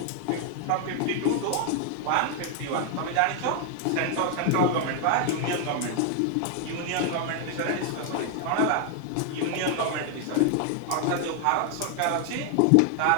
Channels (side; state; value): both; different; correlation 0.00